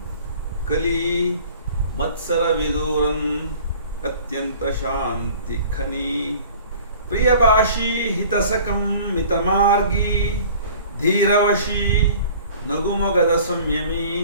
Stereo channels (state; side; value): inverted; both; correlation -0.47